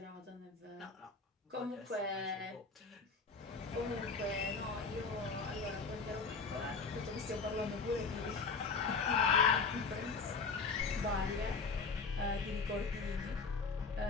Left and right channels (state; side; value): quieter; right; 4.7 dB